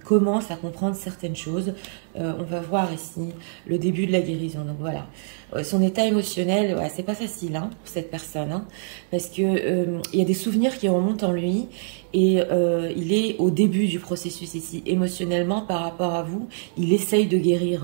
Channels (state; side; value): silent; left; 62 dB below the other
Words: à comprendre certaines choses. On va voir ici le début de la guérison. Donc voilà, son état émotionnel, ouais, c'est pas facile, hein, pour cette personne, hein, parce que il y a des souvenirs qui remontent en lui et il est au début du processus ici, émotionnellement par rapport à vous. Il essaye de